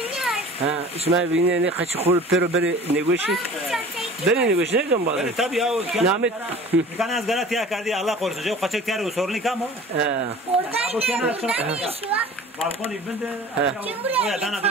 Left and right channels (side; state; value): both; normal; correlation 0.43